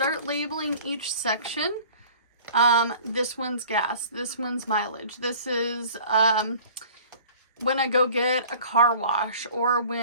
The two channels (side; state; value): both; inverted; correlation -0.46